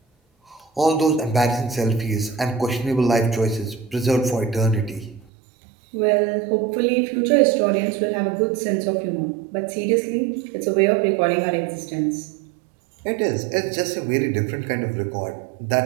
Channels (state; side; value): drops out; left; at 5.2 s